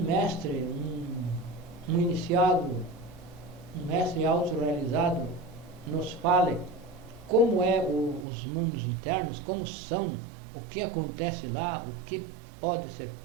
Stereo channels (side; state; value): left; drops out; at 8.2 s